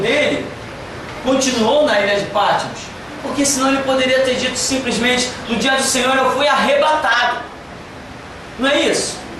continuou na ilha de Patmos, porque senão ele poderia ter dito simplesmente, no dia do Senhor eu fui arrebatado. Não é isso?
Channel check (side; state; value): both; identical; correlation 1.00